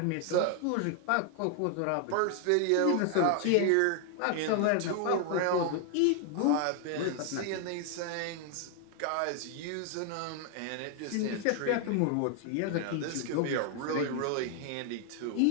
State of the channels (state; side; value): different; both; correlation 0.00